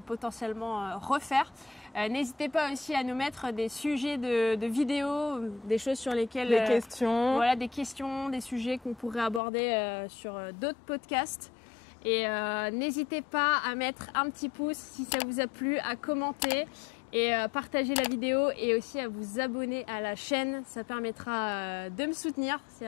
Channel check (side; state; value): right; drops out; at 9.4 s